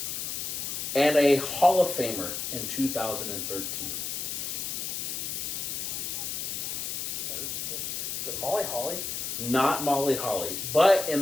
and a Hall of Famer in 2013. Is it Molly Holly? Not Molly Holly, but in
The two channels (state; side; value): noise; left; hiss, 3 dB below the sound